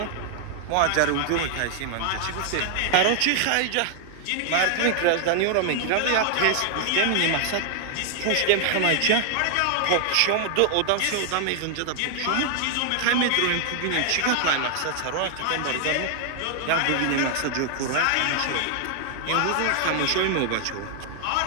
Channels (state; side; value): different; both; correlation 0.00